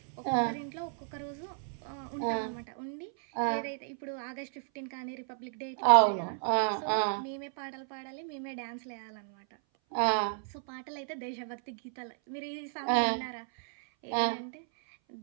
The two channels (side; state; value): left; silent; 56 dB below the other